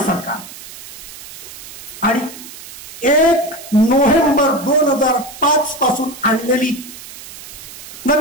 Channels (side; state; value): right; noise; hiss, 15 dB below the sound